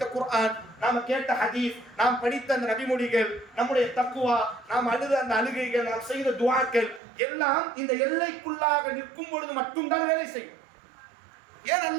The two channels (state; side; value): drops out; left; at 7.0 s